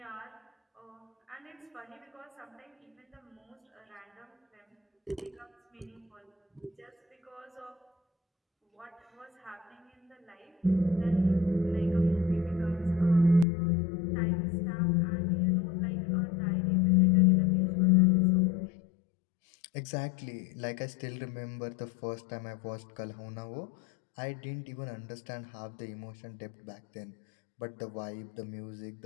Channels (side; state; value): right; drops out; at 13.5 s